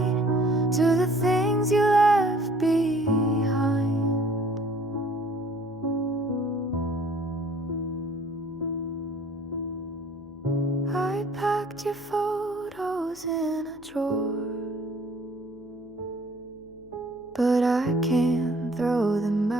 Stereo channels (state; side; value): noise; left; hum, 26 dB below the sound